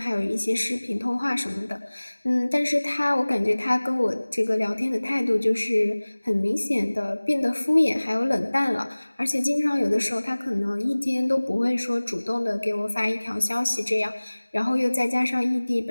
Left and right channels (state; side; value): inverted; both; correlation -1.00